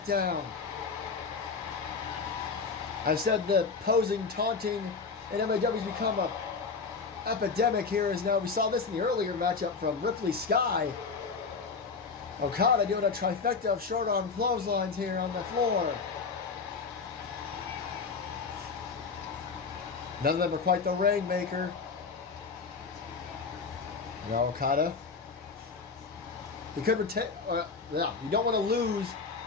down. I've said the posing, taunting in MAW has become a epidemic here. As now we saw this in the earlier matchup from Ripley Sky. Okada doing a trifecta of short arm clotheslines here on the floor. None of them are quite the Rainmaker. Now Okada. He could retain. Yeah, you don't want to lose.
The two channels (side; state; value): right; quieter; 4.9 dB